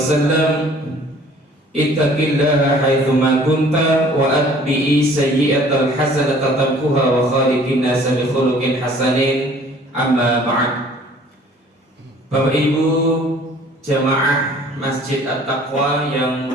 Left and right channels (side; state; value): both; normal; correlation 0.53